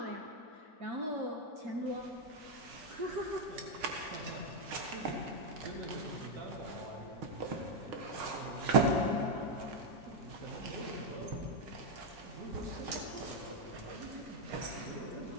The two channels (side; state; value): left; late; 6.4 ms